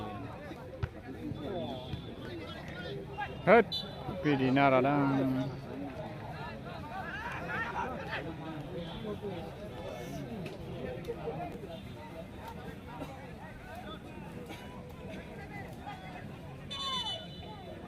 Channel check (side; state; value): both; identical; correlation 1.00